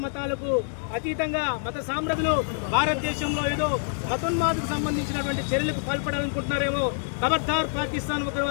మతాలకు అతీతంగా మత సామ్రాజ్యులు భారతదేశంలో ఏదో మతోన్మాదకు సంబంధించినటువంటి చర్యలకు పాల్పడాలనుకుంటున్నారేమో. ఖబర్దార్ పాకిస్తాన్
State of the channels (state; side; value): silent; right; digital silence